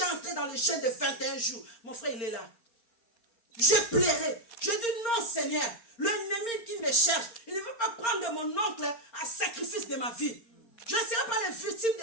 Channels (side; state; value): right; late; 4.3 ms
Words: entré dans le jeûne de 21 jours. Mon frère, il est là. Je pleurais. Je dis non, Seigneur. L'ennemi qui me cherche, il ne veut pas prendre mon oncle à sacrifice de ma vie. Je ne serai pas les victimes